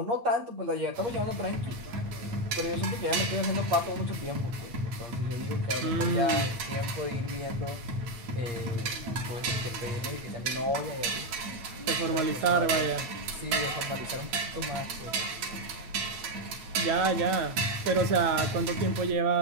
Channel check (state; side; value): late; left; 8.6 ms